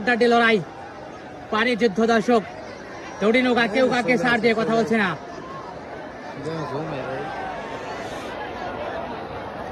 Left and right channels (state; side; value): identical; both; correlation 1.00